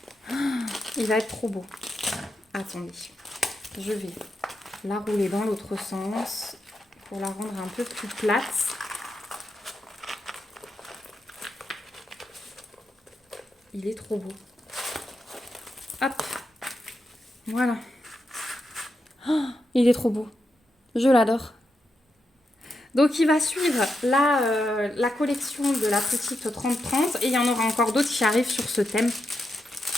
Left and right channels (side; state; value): both; normal; correlation 0.85